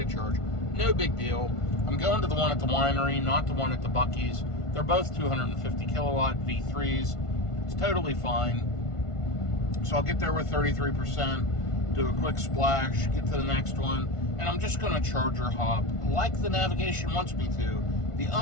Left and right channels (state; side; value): late; right; 1.5 ms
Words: of charge. No big deal. I'm going to the one at the winery, not the one at the Buc-ee's. They're both 250 kilowatt V3s. It's totally fine. So I'll get there with 33%, do a quick splash, get to the next one, and I'm just going to charger hop like the navigation wants me to. The